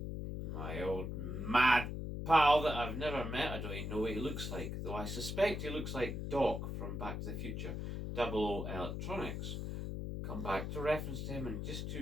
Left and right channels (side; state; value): left; noise; hum, 4 dB below the sound